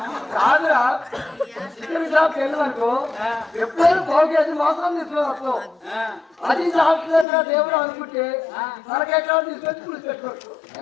కాదురా చికెన్ షాప్కి వెళ్ళిననుకో ఎప్పుడైనా 1/2 కేజీ మాత్రం తీసుకున్నావు అది సాక్షిగా దేవుడు అనుకుంటే తలకాయ కాడు తీసుకొచ్చి పులుసు పెట్టుకోవచ్చు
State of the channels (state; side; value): drops out; right; at 7.2 s